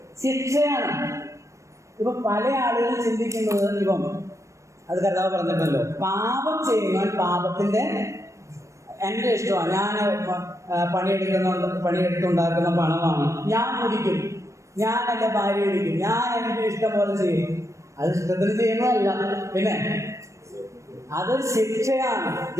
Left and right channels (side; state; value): left; late; 0.15 ms